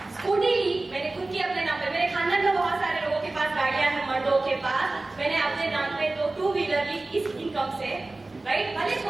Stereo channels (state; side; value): quieter; left; 3.1 dB